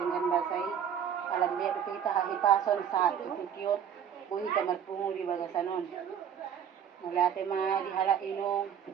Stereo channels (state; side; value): quieter; left; 8.6 dB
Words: basay. Alam dia kita hahipason sa tututyon, buhi ka marpungo di bagasanon. Mula te dihala inong,